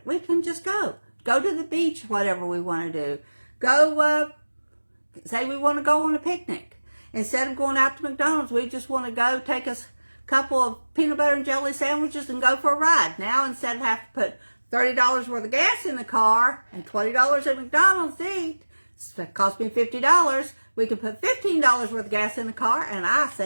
We can just go to the beach, whatever we want to do. Go, say we want to go on a picnic. Instead of going out to McDonald's, we just want to go take us a couple of peanut butter and jelly sandwiches and go for a ride. Now, instead of having to put $30 worth of gas in the car and $20 at McDonald's to eat, it cost me $50. We can put $15 worth of gas in the car, and I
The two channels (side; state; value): both; inverted; correlation -1.00